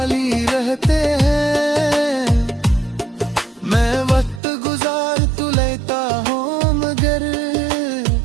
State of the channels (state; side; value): drops out; left; at 4.4 s